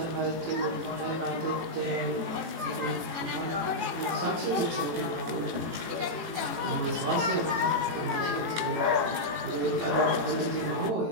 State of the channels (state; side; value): late; left; 18 ms